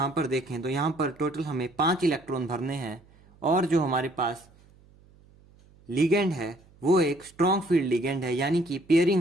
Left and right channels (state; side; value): noise; right; hum, 28 dB below the sound